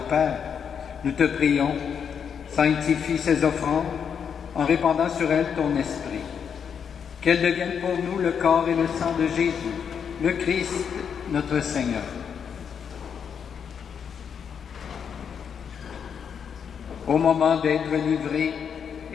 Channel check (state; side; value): quieter; right; 7.3 dB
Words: Père, nous te prions, sanctifie ces offrandes en répandant sur elles ton esprit. Qu'elles deviennent pour nous le corps et le sang de Jésus, le Christ, notre Seigneur. Au moment d'être livré